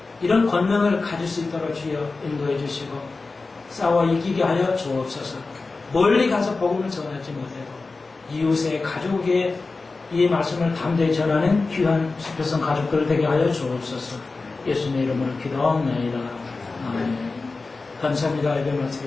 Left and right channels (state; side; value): quieter; right; 3.8 dB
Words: 이런 권능을 가질 수 있도록 주여 인도해 주시고 싸워 이기게 하여 주옵소서. 멀리 가서 복음을 전하지 못해도 이웃의 가족의 이 말씀을 담대히 전하는 귀한 수표성 가족들 되게 하여 주옵소서. 예수님의 이름으로 기도하옵나이다. 아멘. 감사합니다. 예배